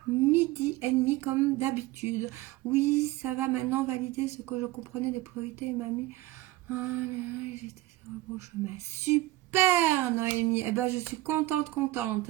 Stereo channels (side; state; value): left; quieter; 17.6 dB